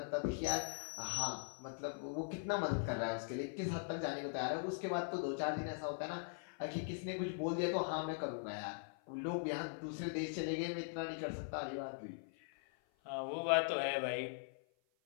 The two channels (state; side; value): silent; right; 50 dB below the other